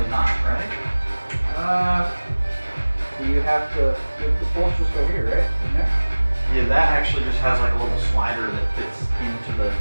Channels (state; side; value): inverted; both; correlation -1.00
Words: not, right? You have to, the bolsters go here, right? In there? Yeah, that actually just has like a little slider that fits into the...